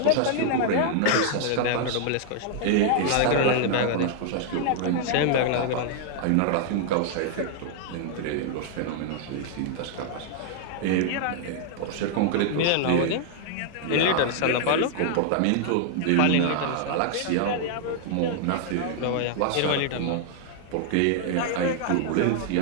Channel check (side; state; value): both; different; correlation 0.00